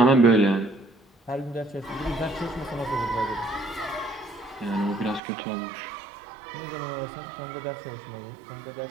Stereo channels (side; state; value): left; drops out; at 5.2 s